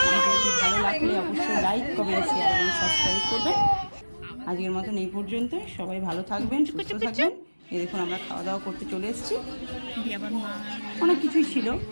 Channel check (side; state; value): both; inverted; correlation -1.00